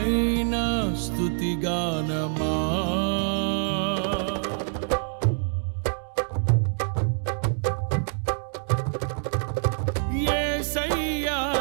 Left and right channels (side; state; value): left; silent; digital silence